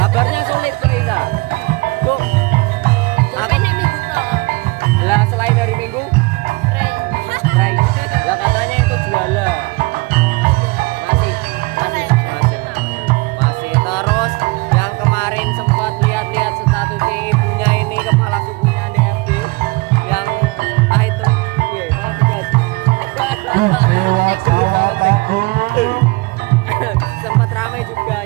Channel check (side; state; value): left; quieter; 25.1 dB